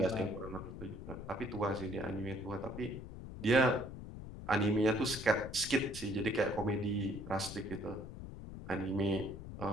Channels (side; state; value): left; noise; rumble, 10 dB below the sound